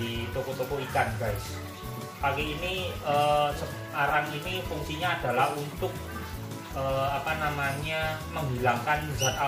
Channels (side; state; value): both; identical; correlation 1.00